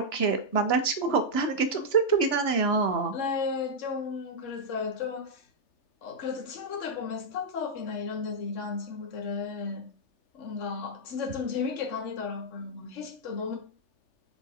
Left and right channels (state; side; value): late; right; 3.3 ms